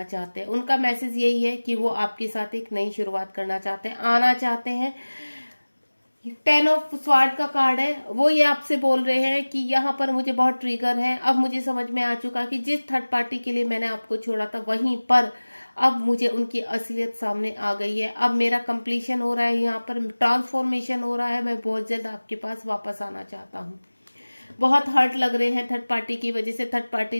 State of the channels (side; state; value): both; inverted; correlation -1.00